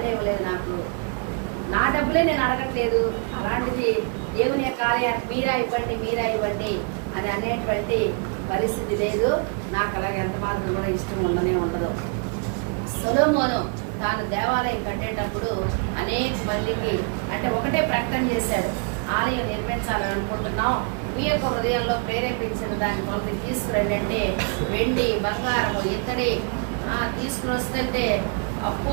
ఇవ్వలేదు నాకు. నా డబ్బులే నేను అడగట్లేదు. అలాంటిది దేవుని యొక్క కార్యాన్ని మీరా ఇవ్వండి అని అనేటువంటి పరిస్థితి లేదు. నాకు అలాగే ఎంత మాత్రం కూడా ఇష్టం ఉండదు. సొలొమోను తాను దేవాలయం కట్టేటప్పుడు అనేక మందికి అంటే ఒకటే ప్రకటన చేశారు, ఆలయం నిర్మించాలని అనుకుంటున్నాం, మీ యొక్క హృదయంలో ప్రేరేపించిన దాని కొరకు తీసుకురండి అంటే వెండి బంగారము ఇత్తడి తీసుకుని వస్తుంటే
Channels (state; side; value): quieter; left; 37.1 dB